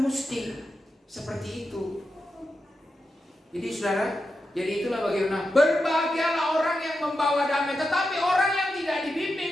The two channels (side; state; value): both; normal; correlation 0.88